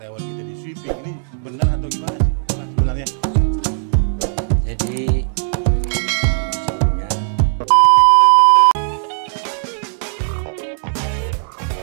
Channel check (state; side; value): silent; left; digital silence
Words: kita di sweeping. Ini benar atau gimana sih bah, sebenarnya? Jadi sebelumnya